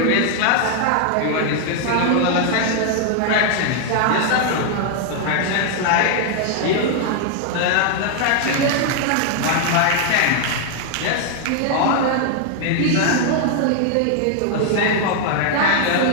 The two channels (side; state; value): both; different; correlation 0.00